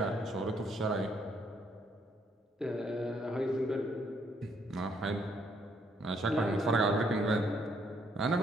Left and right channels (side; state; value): both; normal; correlation 0.70